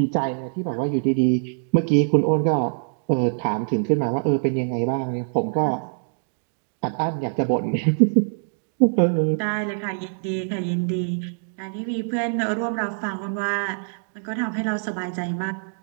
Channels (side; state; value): left; silent; digital silence